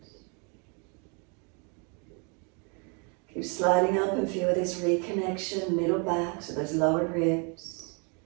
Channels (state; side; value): quieter; left; 35.7 dB